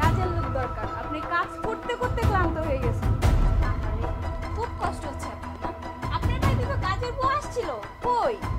লোক দরকার, আপনি কাজ করতে করতে ক্লান্ত হয়ে গেছেন। আরে খুব কষ্ট হচ্ছে আপনার। আপনার বাড়িতে তো কাজের বউ আসছিল, কই?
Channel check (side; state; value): both; identical; correlation 1.00